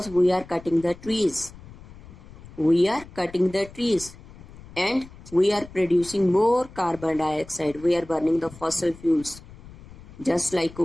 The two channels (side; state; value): left; noise; rumble, 19 dB below the sound